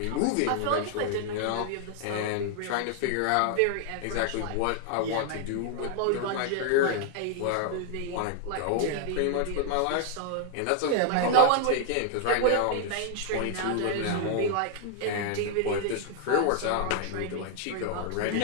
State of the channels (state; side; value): different; both; correlation 0.00